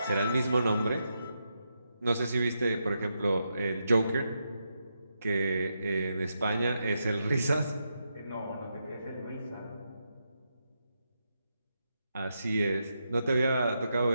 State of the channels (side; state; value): both; inverted; correlation -0.84